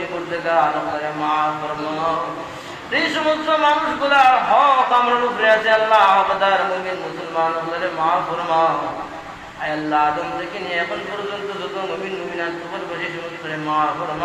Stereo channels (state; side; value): identical; both; correlation 1.00